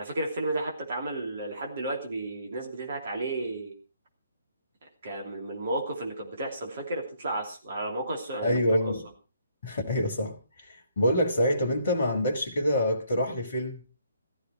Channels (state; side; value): inverted; both; correlation -0.68